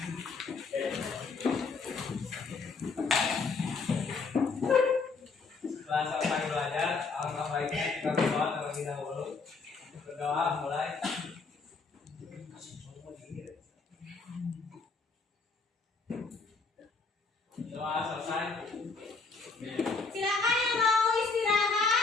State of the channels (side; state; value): right; quieter; 4.4 dB